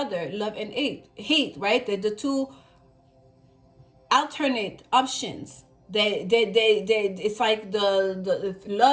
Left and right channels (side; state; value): both; identical; correlation 1.00